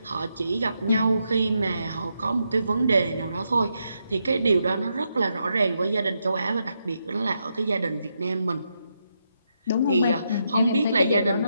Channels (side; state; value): both; inverted; correlation -0.82